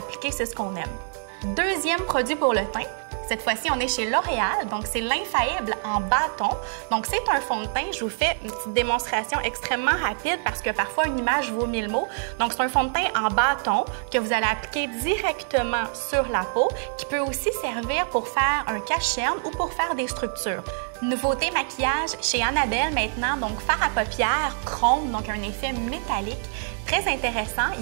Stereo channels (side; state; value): left; silent; digital silence